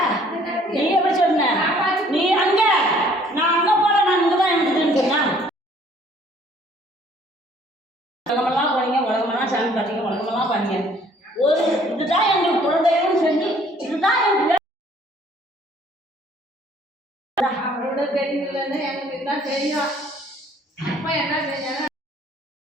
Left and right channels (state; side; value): normal; both; correlation 0.59